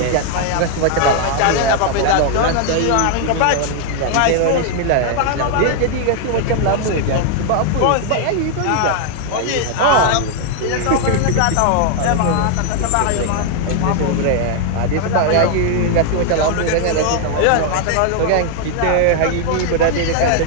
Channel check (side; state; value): both; different; correlation 0.00